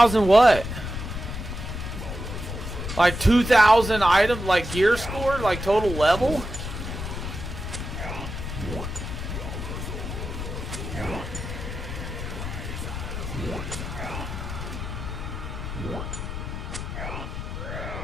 what? Like 2,000 items, like gear score, like total level?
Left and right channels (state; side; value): noise; left; rumble, 6 dB below the sound